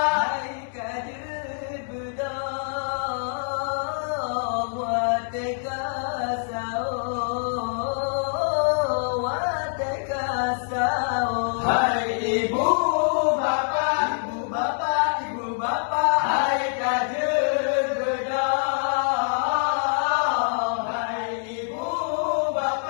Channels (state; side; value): silent; right; digital silence